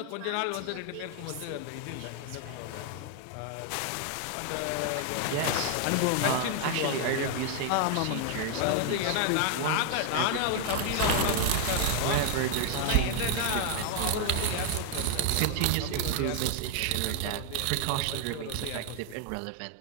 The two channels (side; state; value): both; different; correlation 0.00